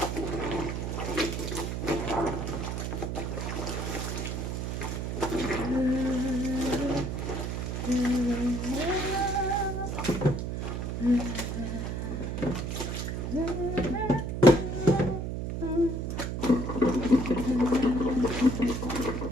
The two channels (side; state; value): right; noise; hum, 3 dB below the sound